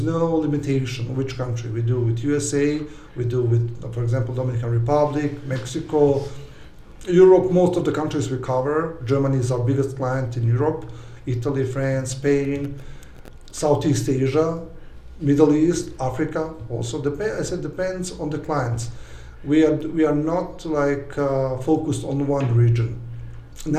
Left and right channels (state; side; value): identical; both; correlation 1.00